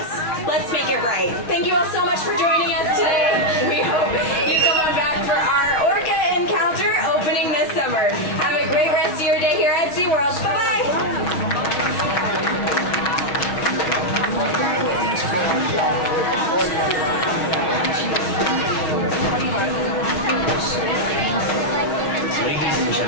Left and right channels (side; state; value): right; late; 6.2 ms